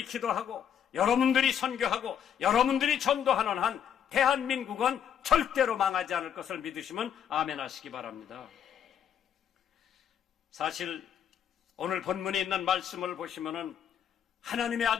기도하고 여러분들이 선교하고 여러분들이 전도하는 한 대한민국은 절대로 망하지 않을 것을 믿으시면 아멘 하시기 바랍니다. 사실 오늘 본문에 있는 말씀을 보시면은 하나님의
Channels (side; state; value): right; quieter; 8.8 dB